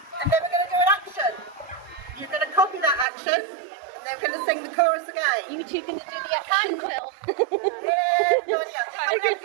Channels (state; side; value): drops out; left; at 3.1 s